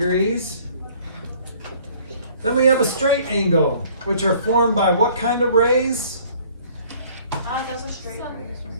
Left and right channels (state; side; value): inverted; both; correlation -0.55